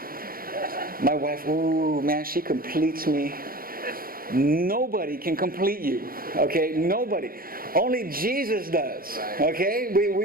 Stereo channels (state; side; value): late; left; 0.42 ms